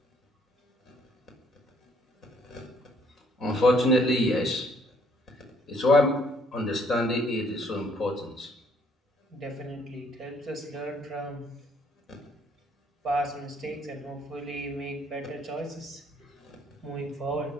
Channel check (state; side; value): normal; both; correlation 0.65